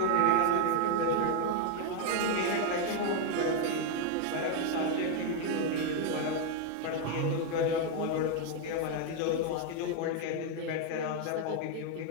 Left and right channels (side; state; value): both; different; correlation 0.01